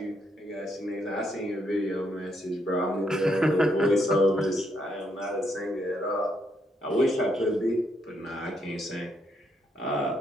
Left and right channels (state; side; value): normal; both; correlation 0.75